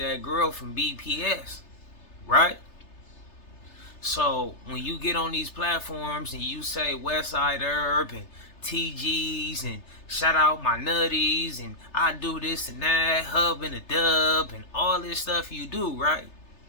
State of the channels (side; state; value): right; late; 3.3 ms